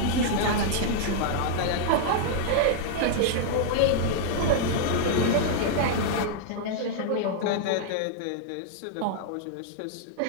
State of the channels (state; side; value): different; both; correlation -0.01